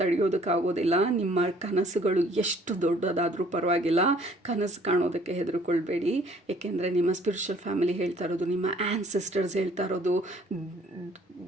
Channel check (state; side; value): normal; both; correlation 0.58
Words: ತಡೆಯೋದಕ್ಕಾಗೋದಿಲ್ಲ. ನಿಮ್ಮ ಕನಸುಗಳು ಎಷ್ಟು ದೊಡ್ಡದಾದರೂ ಪರವಾಗಿಲ್ಲ, ಕನಸು ಕಾಣೋದಕ್ಕೆ ಹೆದರ್ಕೊಳ್ಬೇಡಿ. ಏಕೆಂದರೆ ನಿಮ್ಮ ಸ್ಪಿರಿಚುವಲ್ ಫ್ಯಾಮಿಲಿ ಹೇಳ್ತಾ ಇರೋದು, ನಿಮ್ಮ ಆ್ಯನ್ಸಿಸ್ಟರ್ಸ್ ಹೇಳ್ತಾ ಇರೋದು,